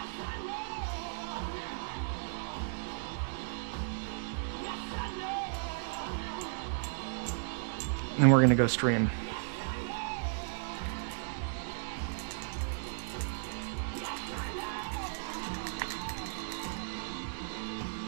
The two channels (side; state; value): left; silent; digital silence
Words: And then we're gonna go stream.